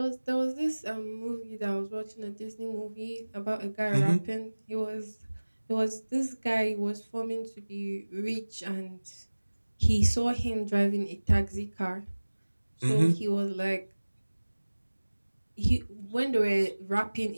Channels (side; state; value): both; inverted; correlation -1.00